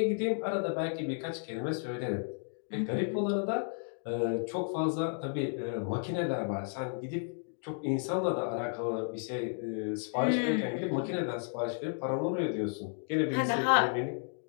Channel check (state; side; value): silent; right; 56 dB below the other